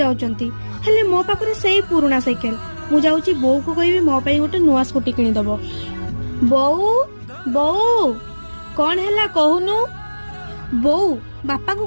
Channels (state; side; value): inverted; both; correlation -1.00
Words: हेले मो पाखरे सेई पुराना साइकेल मु जाउची बो को कहबी मो पई गोटे नुआ स्कूटी किनी दबो। बोऊ बोऊ कौन हैला कहूनु। बोऊ बापा को